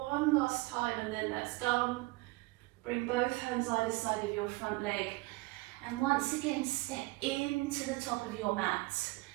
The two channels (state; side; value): quieter; left; 22.9 dB